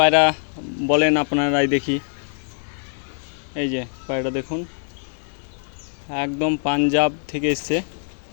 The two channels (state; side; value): silent; right; digital silence